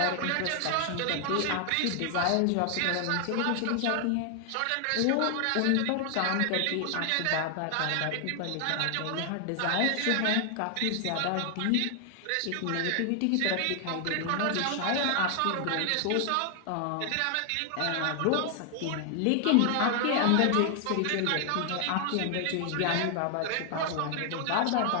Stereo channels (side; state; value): both; different; correlation 0.00